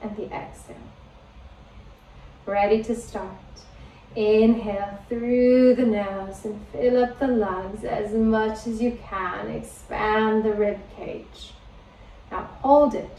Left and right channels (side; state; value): both; identical; correlation 1.00